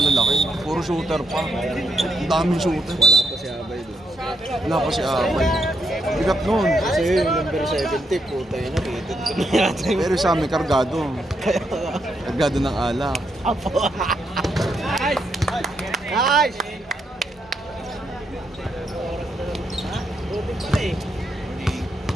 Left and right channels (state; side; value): normal; both; correlation 0.78